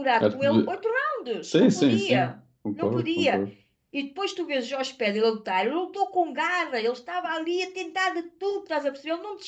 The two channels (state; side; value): identical; both; correlation 1.00